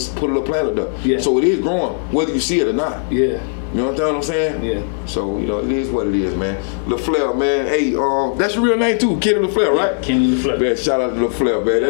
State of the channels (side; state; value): right; silent; 61 dB below the other